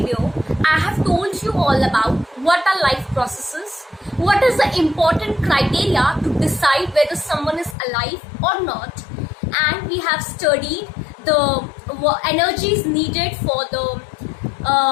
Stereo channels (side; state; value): right; drops out; at 7.8 s